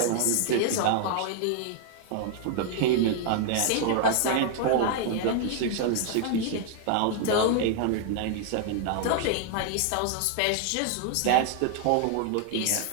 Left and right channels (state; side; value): different; both; correlation 0.00